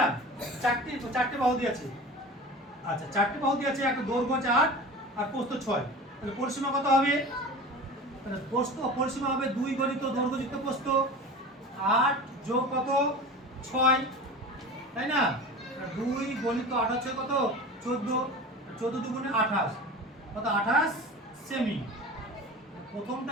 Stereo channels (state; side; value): normal; both; correlation 0.34